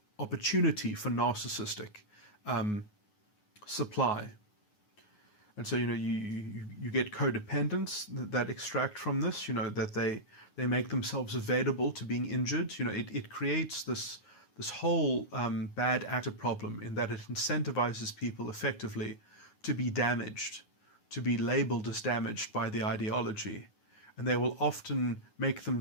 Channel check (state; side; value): late; right; 9.5 ms